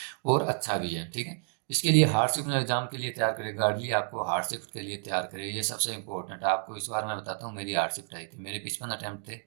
और अच्छा भी है। ठीक है, इसके लिए हार्ड शिफ्ट एग्जाम के लिए तैयार करें, गार्डली आपको हार्ड शिफ्ट के लिए तैयार करें, ये सबसे इंपॉर्टेंट है। आपको इस बार मैं बताता हूँ, मेरी हार्ड शिफ्ट आई थी, मेरे 55 अटैम्प्ट थे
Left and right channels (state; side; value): silent; left; 55 dB below the other